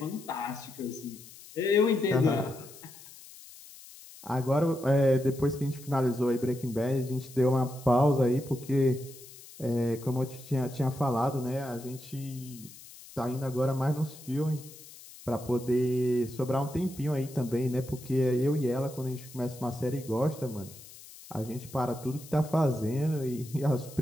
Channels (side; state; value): left; noise; hiss, 18 dB below the sound